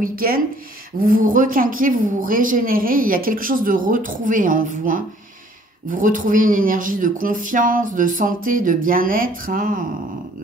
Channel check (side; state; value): both; normal; correlation 0.58